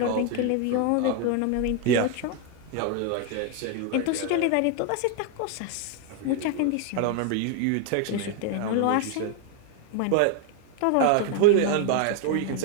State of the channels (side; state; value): both; different; correlation 0.00